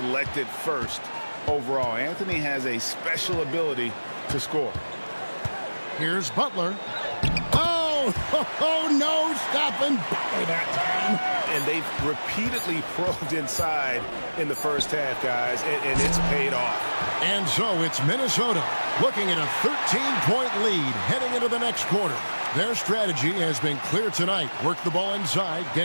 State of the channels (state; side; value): inverted; both; correlation -1.00